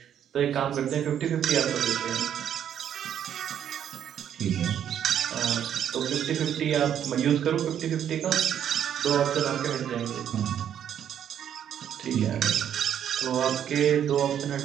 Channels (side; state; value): left; quieter; 9.6 dB